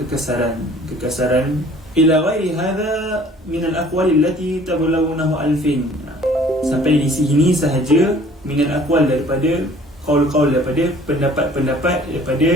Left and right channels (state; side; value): normal; both; correlation 0.53